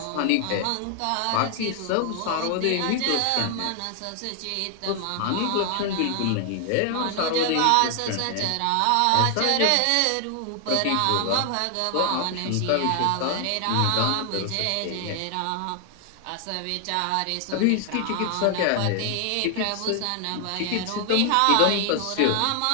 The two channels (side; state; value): both; different; correlation 0.00